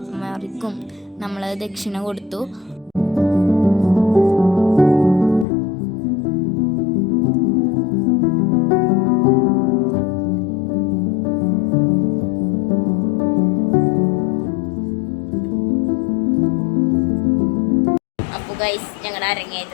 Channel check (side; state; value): right; drops out; at 5.5 s